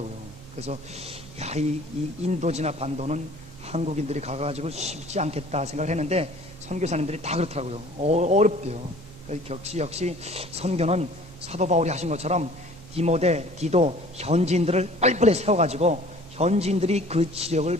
그래서 이 인도지나 반도는 한국인들이 가가지고 쉽지 않겠다 생각을 했는데, 선교사님들이 다 그렇더라고요. 어렵대요. 역시 선교는 사도 바울이 하신 것처럼 디도 현지인들을 빨리빨리 세워가지고 현지인들이 그 지역을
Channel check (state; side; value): noise; right; hum, 19 dB below the sound